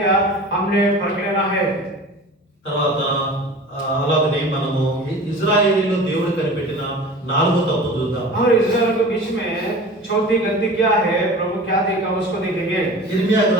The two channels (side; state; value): both; normal; correlation 0.38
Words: हमने फर्क लेना है। తర్వాత అలాగనే మనము ఇజ్రాయేలీలో దేవుడు కనిపెట్టిన 4వ తప్పు చూద్దాం. और इस्राएल के बीच में चौथी गलती क्या है, प्रभु क्या देखा उसको देखेंगे। ఇర్మియా